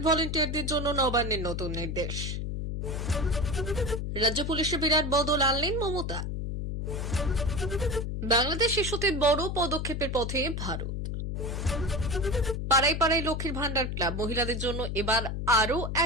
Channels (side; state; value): left; noise; hum, 3 dB below the sound